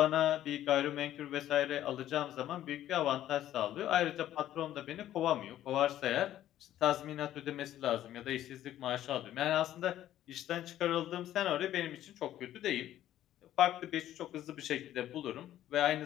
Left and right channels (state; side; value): quieter; right; 12.6 dB